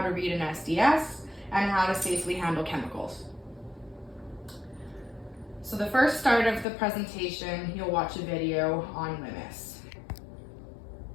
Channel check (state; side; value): drops out; right; at 6.7 s